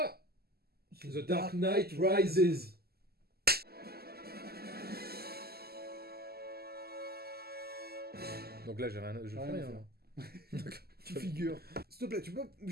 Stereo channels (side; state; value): left; late; 0.46 ms